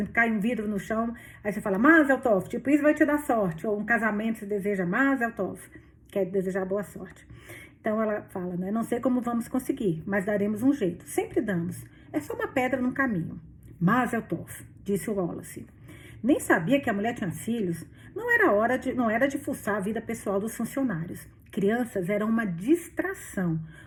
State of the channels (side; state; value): both; identical; correlation 1.00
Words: cai um vidro no chão, aí você fala Mazel tov, tipo, isso vai te dar sorte. Ou um casamento se deseja Mazel tov, quer desejar boa sorte. Então ela fala, né? Não sei como vamos conseguir, mas daremos um jeito. Sempre damos. É só uma pedra no caminho. Mazel tov, disse o Wallace. Nem sabia que a mulher tinha filhos. Não era de fuçar a vida pessoal dos funcionários. Crianças eram uma distração,